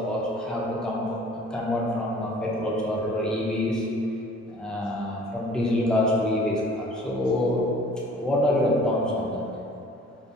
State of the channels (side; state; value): both; normal; correlation 0.51